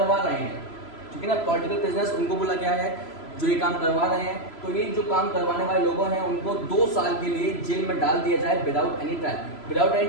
रहे हैं, ठीक है ना, पॉलिटिकल प्रिजनर्स उनको बोला गया है जो ये काम करवा रहे हैं। तो ये जो काम करवाने वाले लोगों हैं उनको 2 साल के लिए जेल में डाल दिया जाए without any trial. Without any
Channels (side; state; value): right; late; 3.0 ms